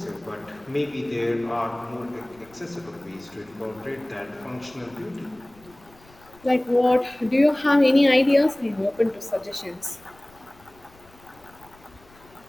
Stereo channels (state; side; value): noise; left; rumble, 27 dB below the sound